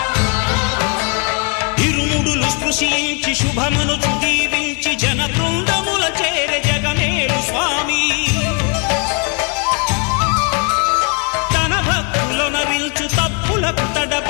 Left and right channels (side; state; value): right; quieter; 35.0 dB